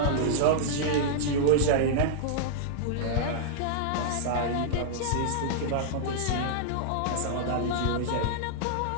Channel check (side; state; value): both; different; correlation -0.02